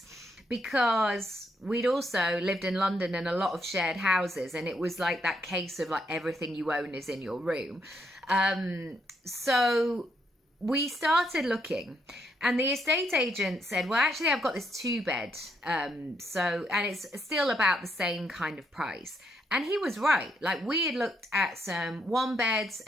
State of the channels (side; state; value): both; normal; correlation 0.76